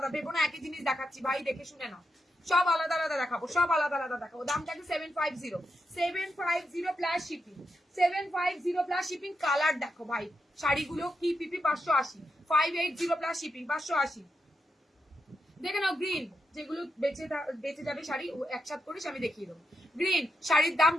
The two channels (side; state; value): both; normal; correlation 0.85